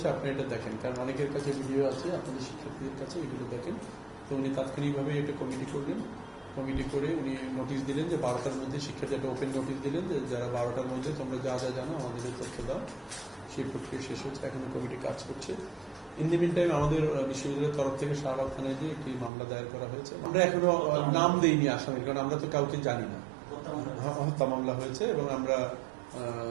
আপনি এটা দেখেন, কারণ অনেকের কাছে ভিডিও আছে, আপনাদের শিক্ষার্থীদের কাছে এগুলো দেখেন। তো উনি তাৎক্ষণিকভাবে এটা কমিটি করলেন, কমিটি করে উনি নোটিশ দিলেন যে 12টার মধ্যে শিক্ষার্থী একটা ওপেন নোটিশ দিলেন যে যারা 12টার মধ্যে তোমরা যা যা জানো আমাদের তথ্য দাও। সেই প্রক্রিয়া শেষ হচ্ছে, এখন কমিটি কাজ করছে। ইন দি মিন টাইম আমাদের বিশ্ববিদ্যালয়ের তরফ থেকে শাহবাগ থানায় যে একটি মামলা দায়ের করা হয়েছে। আমরা এখনো নাম দেইনি আসামির, কারণ আমরা তো কাউকে জানি না। হত্যা মামলা হয়েছে এবং আমরা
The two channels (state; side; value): drops out; left; at 19.3 s